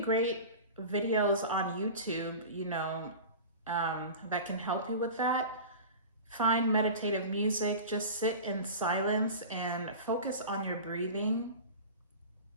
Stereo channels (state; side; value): inverted; both; correlation -0.33